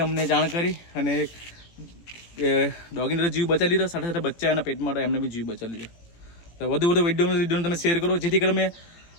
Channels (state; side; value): late; right; 17 ms